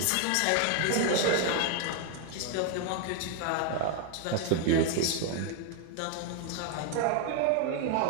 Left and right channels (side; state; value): both; different; correlation 0.00